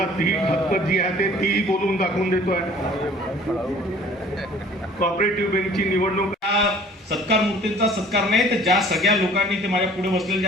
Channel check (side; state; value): both; normal; correlation 0.51